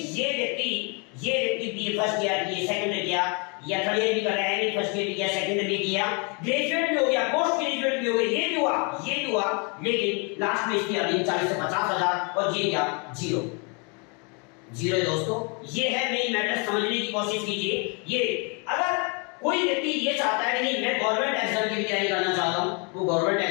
ये व्यक्ति बीए फर्स्ट ईयर किया, सेकंड ईयर किया या थर्ड ईयर भी कर रहा है, एमए फर्स्ट ईयर भी किया, सेकंड ईयर भी किया, ग्रेजुएट भी हो गया, पोस्ट ग्रेजुएट भी हो गया, ये भी हुआ, लेकिन लास्ट में इसकी अर्निंग 40 से 50 हजार और ये क्या 0 है दोस्तों। ये है मेन मैटर, समझने की कोशिश कीजिए। ये अगर कोई व्यक्ति ये चाहता है कि नहीं मैं गवर्नमेंट एग्जाम की तैयारी करना चाहता हूं, वो गवर्नमेंट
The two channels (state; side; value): quieter; right; 34.0 dB